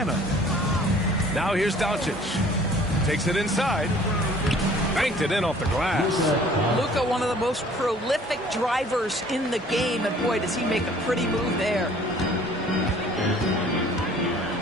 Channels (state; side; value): normal; both; correlation 0.53